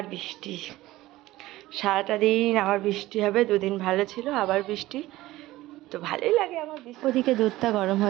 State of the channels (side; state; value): left; quieter; 17.1 dB